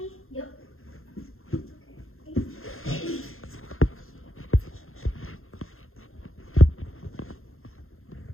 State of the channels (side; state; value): right; late; 0.61 ms